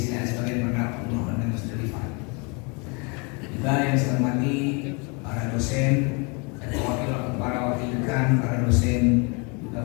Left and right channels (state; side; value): quieter; right; 32.1 dB